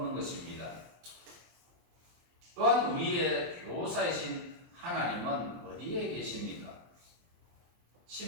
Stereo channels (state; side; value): late; left; 23 ms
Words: 것입니다. 또한 우리의 교사이신 하나님은 어디에 계십니까?